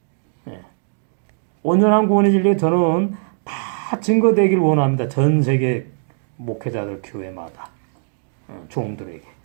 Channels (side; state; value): left; silent; digital silence